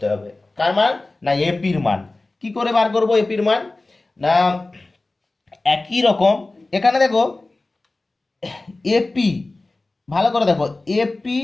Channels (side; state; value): right; quieter; 3.1 dB